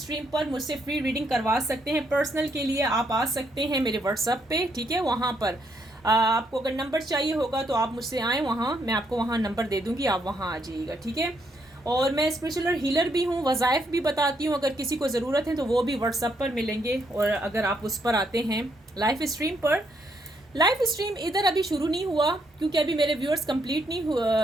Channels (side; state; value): both; normal; correlation 0.75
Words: पर, मुझसे फ्री रीडिंग करवा सकते हैं। पर्सनल के लिए आप आ सकते हैं मेरे व्हाट्सएप पे, ठीक है। वहाँ पर आपको अगर नंबर चाहिए होगा तो आप मुझसे आएँ वहाँ, मैं आपको वहाँ नंबर दे दूँगी, आप वहाँ आ जाइएगा, ठीक है। और मैं स्पिरिचुअल हीलर भी हूँ, वज़ाइफ भी बताती हूँ, अगर किसी को ज़रूरत है तो वो भी व्हाट्सएप पर मिलेंगे। और अगर आप उस पर आते हैं लाइव स्ट्रीम पर, लाइव स्ट्रीम इधर अभी शुरू नहीं हुआ क्योंकि अभी मेरे व्यूअर्स कंप्लीट नहीं